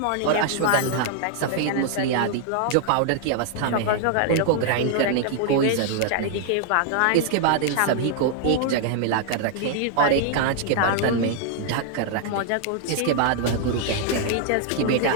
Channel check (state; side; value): different; both; correlation 0.00